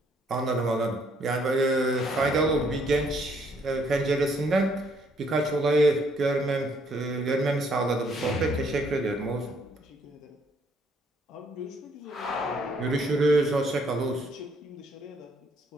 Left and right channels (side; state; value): both; normal; correlation 0.67